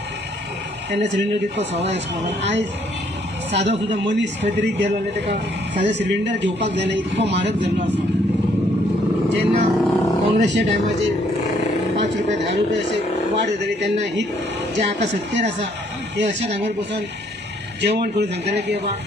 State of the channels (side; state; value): both; normal; correlation 0.67